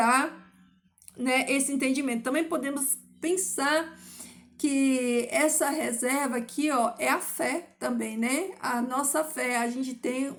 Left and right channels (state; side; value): identical; both; correlation 1.00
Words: né, esse entendimento. Também podemos pensar que essa reserva aqui, ó, é a fé também, né? A nossa fé, a gente tem